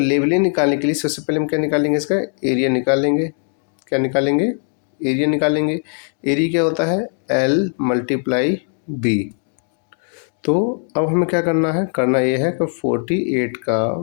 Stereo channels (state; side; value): silent; right; 57 dB below the other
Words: निकालने के लिए सबसे पहले हम क्या निकालेंगे, इसका एरिया निकालेंगे। क्या निकालेंगे, एरिया निकालेंगे। एरिया क्या होता है, L मल्टीप्लाई B। तो अब हमें क्या करना है, करना ये है कि 48 का